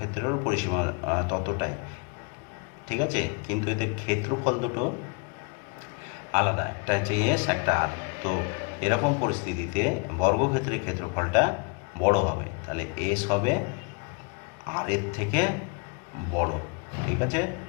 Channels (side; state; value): right; quieter; 31.9 dB